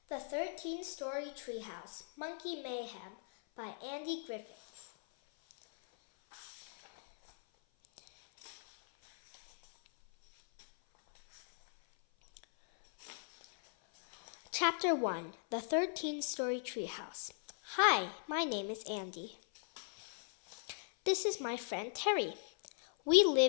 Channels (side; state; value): right; silent; 52 dB below the other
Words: The 13-Story Treehouse, Monkey Mayhem by Andy Griffiths. Chapter 1, The 13-Story Treehouse. Hi, my name is Andy. This is my friend Terry. We